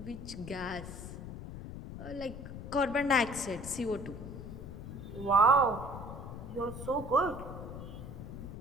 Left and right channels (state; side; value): noise; left; rumble, 9 dB below the sound